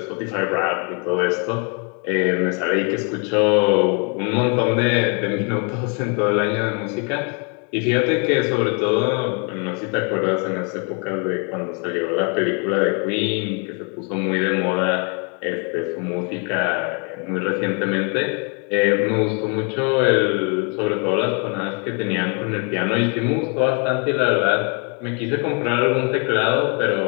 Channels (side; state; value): right; quieter; 36.8 dB